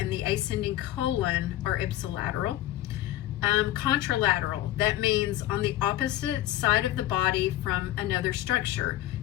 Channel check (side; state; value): right; quieter; 14.5 dB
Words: the ascending colon are ipsilateral. Contralateral, that means on the opposite side of the body from another structure.